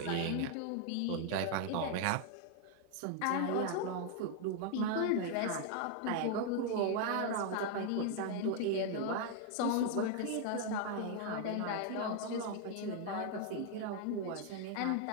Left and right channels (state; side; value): different; both; correlation 0.00